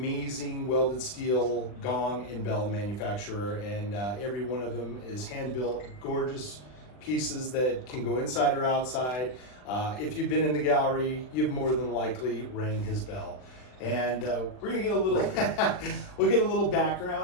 welded steel gong and bell manufacturer, and every one of them is hand-built, gorgeous pieces that can go inside or outside. If you've been in the gallery, you've more than likely rang his bell. And we're gonna get a little, we'll get a little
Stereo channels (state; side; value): late; right; 39 ms